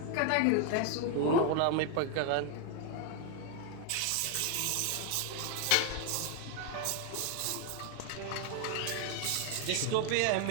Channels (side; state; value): both; different; correlation 0.01